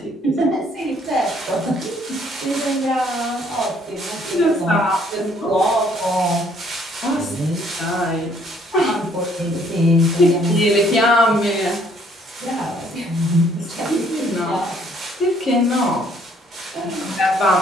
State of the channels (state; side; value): normal; both; correlation 0.63